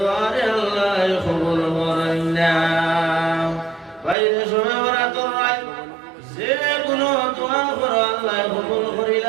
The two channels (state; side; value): drops out; left; at 4.2 s